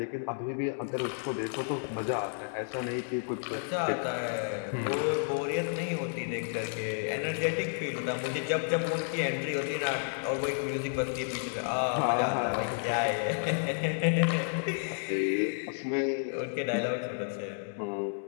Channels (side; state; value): right; silent; digital silence